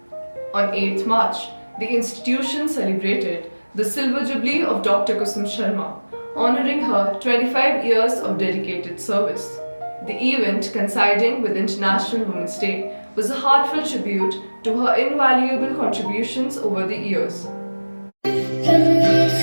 On 8th March, the institution celebrated the Silver Jubilee of Dr. Kusum Sharma, honouring her 25 years of dedicated service. The event, coinciding with International Women's Day, was a heartfelt tribute to her invaluable contributions over the years.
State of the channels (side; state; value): both; inverted; correlation -1.00